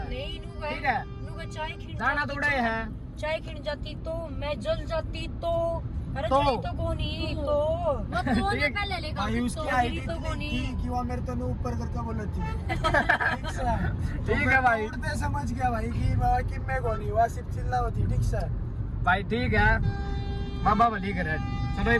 नहीं ठीक है, चाय खिंड दाना थोड़ा है, चाय खिंड जाती तो मैं जल जाती तो। अरे तो जाई तो कोनी तो वो कोने पहले लेगा तो गिरी तो कोनी। कि वो मेरे तो ऊपर करके बोला थी। ठीक है भाई, उड़ते समझ गया भाई कि मैं कोनी हुआ, सिर्फ चिल्ला होती। ठीक सर भाई ठीक है, बाबा भली करे। चलो ये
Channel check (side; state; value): both; identical; correlation 1.00